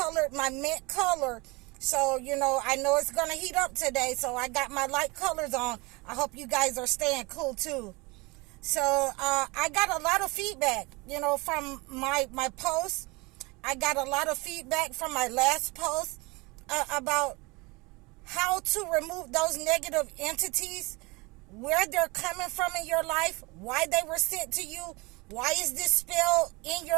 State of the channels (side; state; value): left; quieter; 25.7 dB